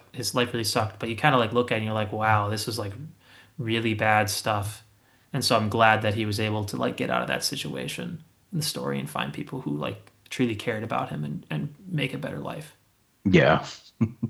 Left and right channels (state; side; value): identical; both; correlation 1.00